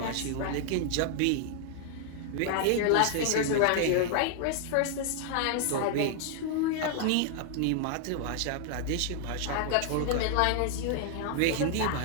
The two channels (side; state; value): both; different; correlation 0.00